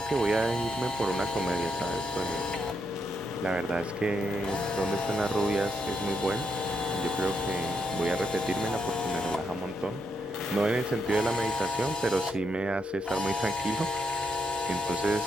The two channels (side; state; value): left; noise; hum, 28 dB below the sound